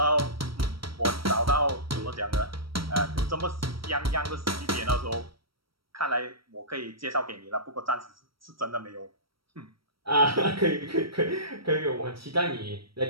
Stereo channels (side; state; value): left; late; 0.75 ms